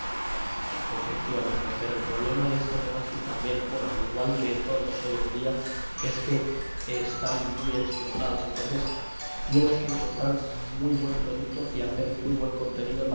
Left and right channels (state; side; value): inverted; both; correlation -1.00